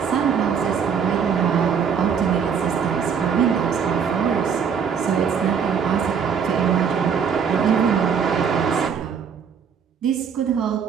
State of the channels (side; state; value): left; quieter; 6.9 dB